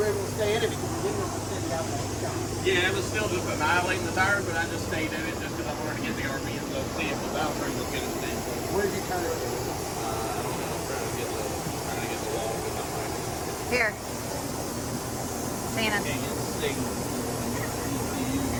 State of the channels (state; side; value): identical; both; correlation 1.00